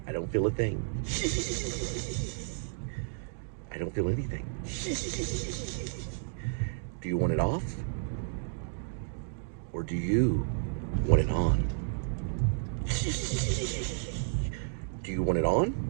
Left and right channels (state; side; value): silent; left; digital silence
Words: I don't feel a thing. I don't feel anything. Do you want it off? Or do you want it on? Do you want it on?